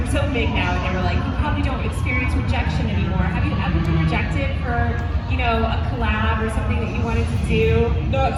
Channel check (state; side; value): identical; both; correlation 1.00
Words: so big now, and they were like, you probably don't experience rejection anymore. Have you ever been rejected for, a collab or something that you wanted to do? No, it